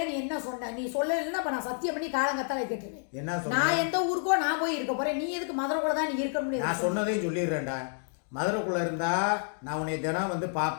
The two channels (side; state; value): right; silent; digital silence